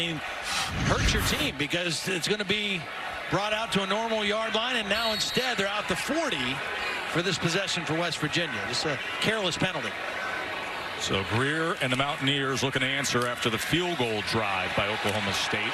hurts your team because it's going to be brought out to a normal yard line, and now instead they're out the 40 for this possession for West Virginia. Just a careless penalty. So Greer and the Mountaineers looking to answer after the field goal drive by Oklahoma State,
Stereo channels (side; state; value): both; identical; correlation 1.00